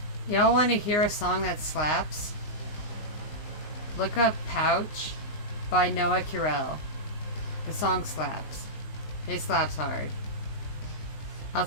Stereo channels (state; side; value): late; right; 19 ms